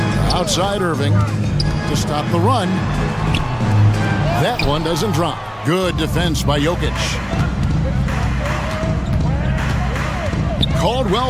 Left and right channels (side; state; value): both; identical; correlation 1.00